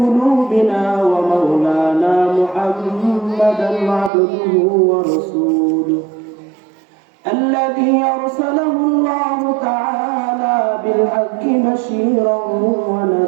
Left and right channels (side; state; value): left; drops out; at 4.1 s